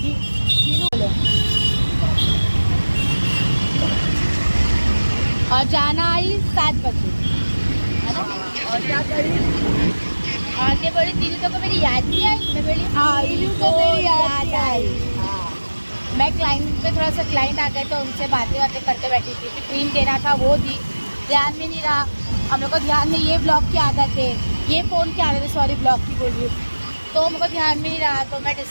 चीनू बोले। और जाना आई 7 बजे, है ना। और क्या करी? आगे बोली तीनों को मेरी याद नहीं आई, मैं बोली तीनों को मेरी याद आई। मैं क्लाइंट पे थोड़ा सा क्लाइंट आ गए तो उनसे बातें करते बैठी थी कि क्रीम देना था, वो दी, ध्यान में नहीं रहा। हम लोग को ध्यान में ये ब्लॉग की आदत है, ये फ़ोन की आदत है, सॉरी ब्लॉग की बोल रही हूँ। तो मुझे ध्यान में नहीं रहा, तो मैं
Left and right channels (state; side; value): inverted; both; correlation -1.00